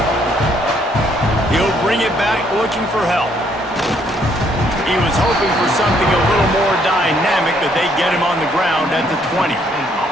He'll bring it back looking for help. He was hoping for something a little more dynamic, but they get him on the ground at the 20.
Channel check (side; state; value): both; normal; correlation 0.68